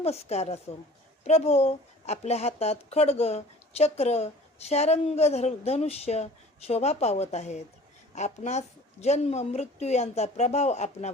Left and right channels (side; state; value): both; normal; correlation 0.46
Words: असो. प्रभो, आपल्या हातात खड्ग, चक्र, शारंग, धनुष्य शोभा पावत आहेत. आपणास जन्म मृत्यू यांचा प्रभाव